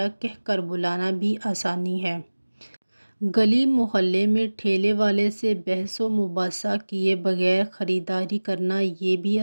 کہہ کر بلانا بھی آسانی ہے۔ گلی محلے میں ٹھیلے والے سے بحث و مباحثہ کیے بغیر خریداری کرنا، یہ بھی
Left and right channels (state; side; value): inverted; both; correlation -1.00